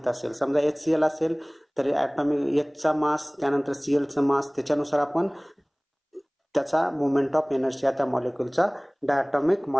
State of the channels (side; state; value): both; identical; correlation 1.00